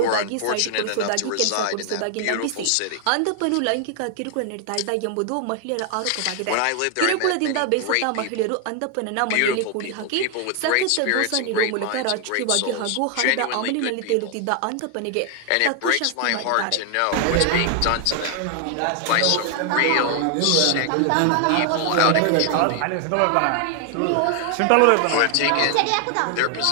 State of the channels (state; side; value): different; both; correlation 0.00